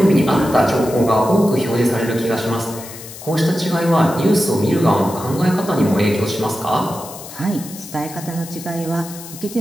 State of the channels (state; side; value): noise; left; hiss, 14 dB below the sound